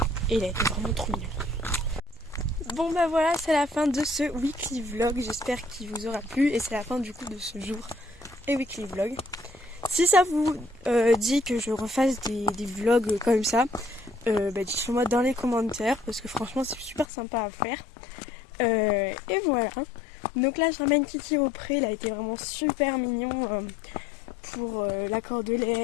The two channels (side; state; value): right; drops out; at 17.1 s